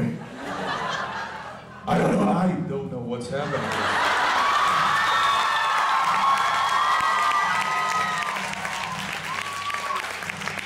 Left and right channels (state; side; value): identical; both; correlation 1.00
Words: I don't know what's happening.